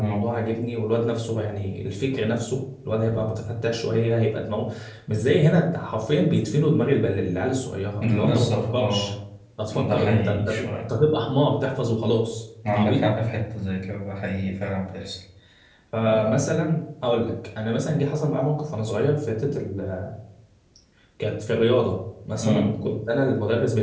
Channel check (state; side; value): identical; both; correlation 1.00